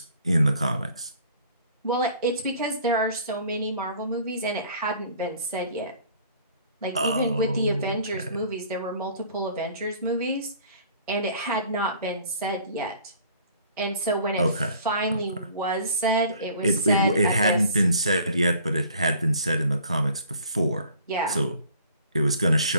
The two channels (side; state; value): both; inverted; correlation -0.54